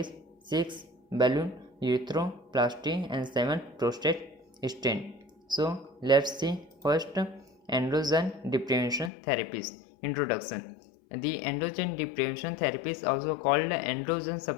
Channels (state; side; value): drops out; right; at 9.1 s